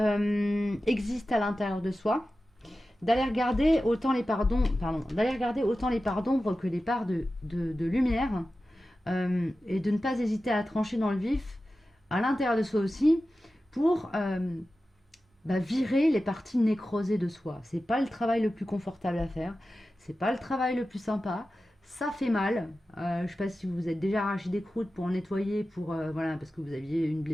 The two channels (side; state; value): both; normal; correlation 0.94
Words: existe à l'intérieur de soi. D'aller regarder autant les parts d'ombre que les parts de lumière. Et de ne pas hésiter à trancher dans le vif à l'intérieur de soi aussi pour... virer les parties nécrosées de soi. C'est pas le travail le plus confortable à faire. C'est pas le travail le plus sympa. Ça fait mal. Je sais pas si vous vous êtes déjà arraché des croûtes pour nettoyer, voilà, parce que vous aviez une